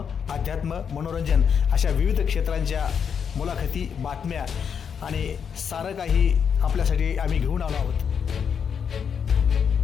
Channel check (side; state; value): right; quieter; 7.1 dB